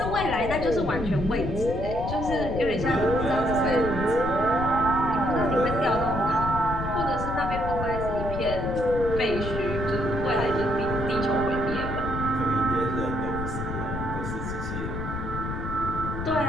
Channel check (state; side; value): noise; left; rumble, 5 dB below the sound